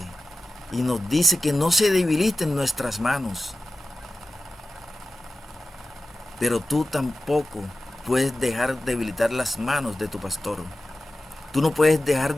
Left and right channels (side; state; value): both; normal; correlation 0.94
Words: y nos dice que no se debiliten nuestras manos. Pero tú tampoco puedes dejar debilitar las manos de tu pastor. Tú no puedes dejar